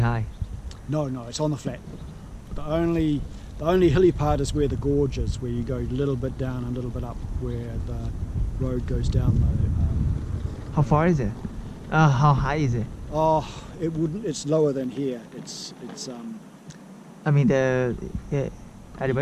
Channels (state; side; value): identical; both; correlation 1.00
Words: No, it's on the flat. The only hilly part is where the gorge is, where you go a little bit down and a little bit up, where the road goes down the. How far is it? How high is it? Oh, it wouldn't. It's lower than here. It's. I mean the